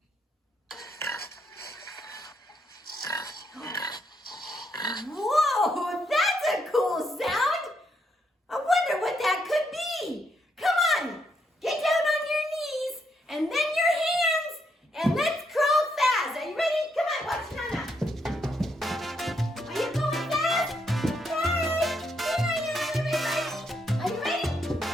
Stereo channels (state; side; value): normal; both; correlation 0.77